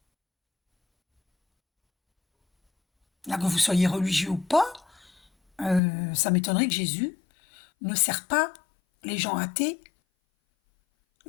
Là, que vous soyez religieux ou pas, ça m'étonnerait que Jésus ne sert pas les gens athées,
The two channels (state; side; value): drops out; right; at 5.8 s